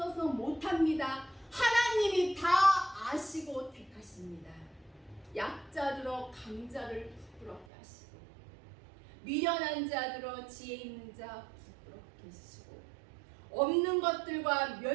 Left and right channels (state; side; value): drops out; left; at 7.7 s